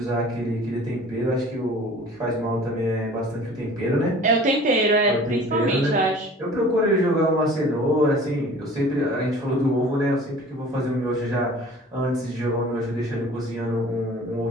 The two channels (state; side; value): normal; both; correlation 0.46